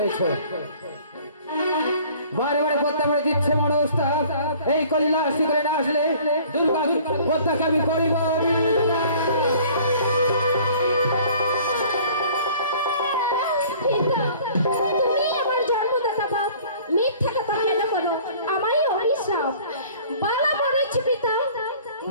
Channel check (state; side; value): inverted; both; correlation -0.51